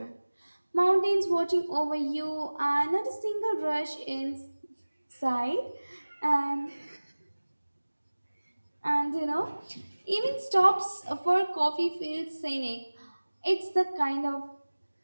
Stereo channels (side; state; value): both; inverted; correlation -1.00